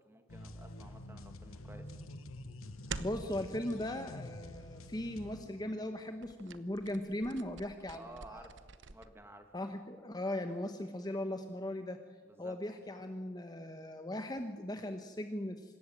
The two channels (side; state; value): both; normal; correlation 0.75